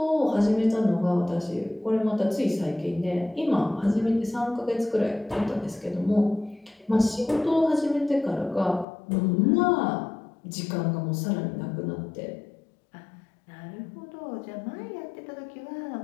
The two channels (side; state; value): right; drops out; at 8.8 s